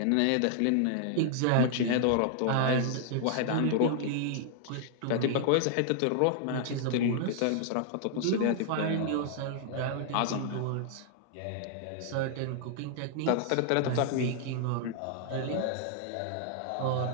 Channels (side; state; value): both; different; correlation -0.01